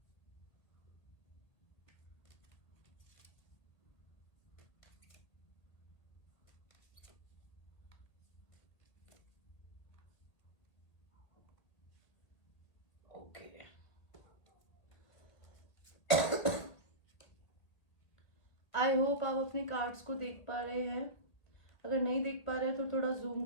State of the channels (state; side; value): late; right; 1.8 ms